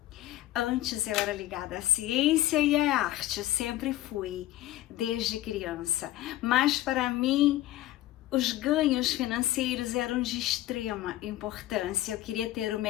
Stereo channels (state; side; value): quieter; right; 15.1 dB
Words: Antes eu era ligada à ciência e à arte, sempre fui, desde criança. Mas para mim, os ganhos financeiros eram de extrema importância. Eu queria ter o